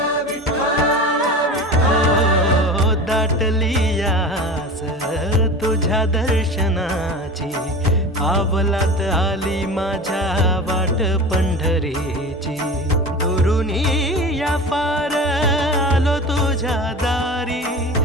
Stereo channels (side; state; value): both; normal; correlation 0.32